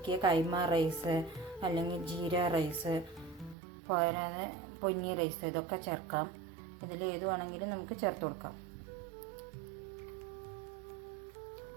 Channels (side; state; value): left; drops out; at 3.6 s